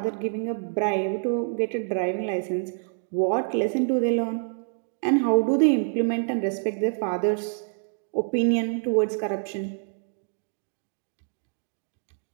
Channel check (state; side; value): silent; left; digital silence